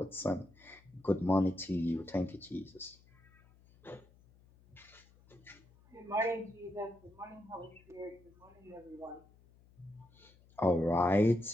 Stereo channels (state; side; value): noise; left; hum, 27 dB below the sound